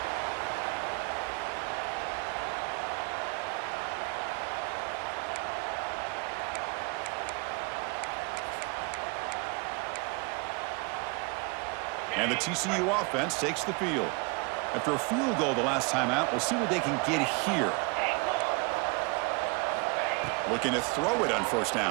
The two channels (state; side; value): quieter; left; 29.9 dB